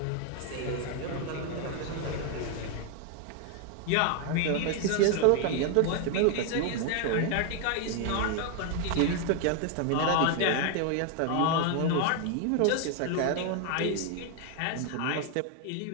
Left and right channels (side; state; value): both; different; correlation 0.00